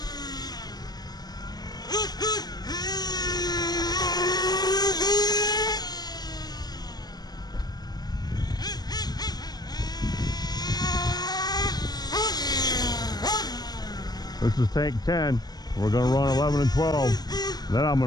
This is tank 10. We're going to run 11 and 12. Then I'm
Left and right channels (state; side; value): late; right; 0.19 ms